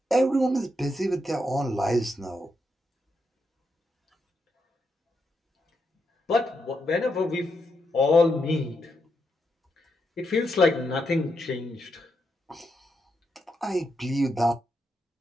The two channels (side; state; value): both; normal; correlation 0.82